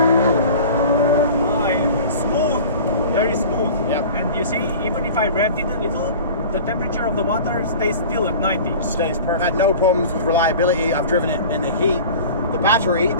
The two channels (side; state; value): both; inverted; correlation -0.39